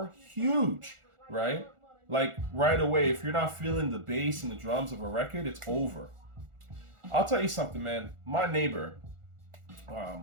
huge, right? Like right away, if you're not feeling the bass and the drums of a record, it's over. I'll tell you something, man. My neighbor,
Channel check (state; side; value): late; left; 1.4 ms